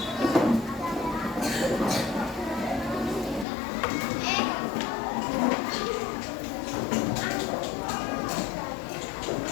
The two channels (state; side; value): drops out; right; at 3.5 s